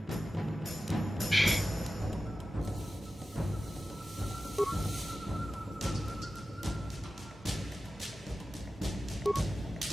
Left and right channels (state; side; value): normal; both; correlation 0.94